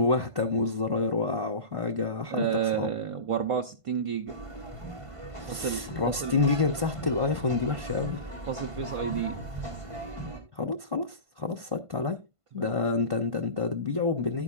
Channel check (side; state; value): left; late; 1.5 ms